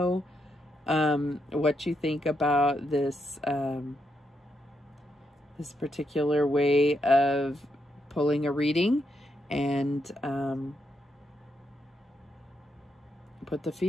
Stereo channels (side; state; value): both; normal; correlation 0.81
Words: what you think about this this particular way of pulling a reading, and put the